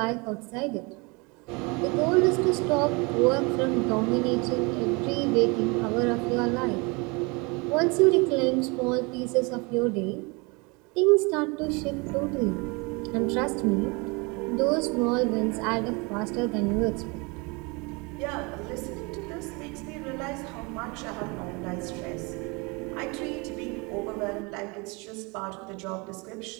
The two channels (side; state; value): left; quieter; 28.6 dB